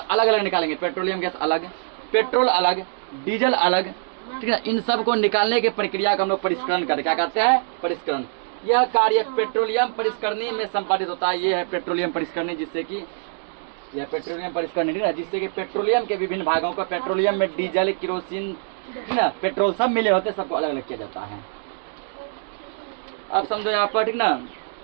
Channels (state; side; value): silent; left; digital silence